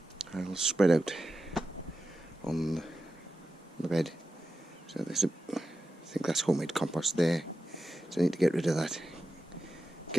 I'll spread out on the bed. So there's I think that's homemade compost there, so I need to get rid of that,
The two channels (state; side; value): normal; both; correlation 0.91